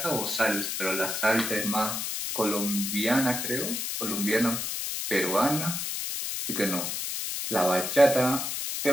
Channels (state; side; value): noise; left; hiss, 3 dB below the sound